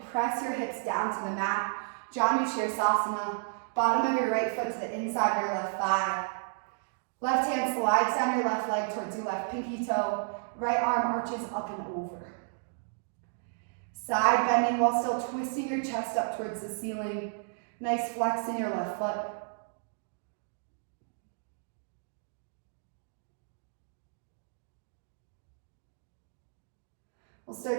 press your hips down to the mat. Janu Shirsasana. Bottom of your right foot to the inside of your left thigh. Left hand slides down your left leg towards your left pinky toe. Right arm arches up and over. Side bending while still twisting your chest up towards the ceiling. Nice flex in your left foot. We'll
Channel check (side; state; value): left; silent; digital silence